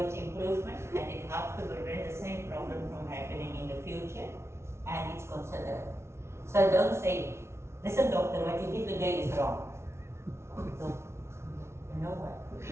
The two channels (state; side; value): late; left; 0.13 ms